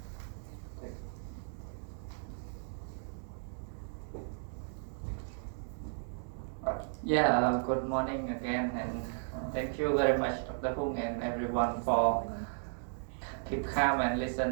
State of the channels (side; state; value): left; silent; digital silence